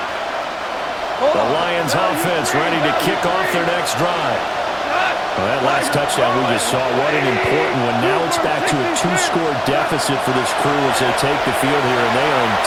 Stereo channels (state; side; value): identical; both; correlation 1.00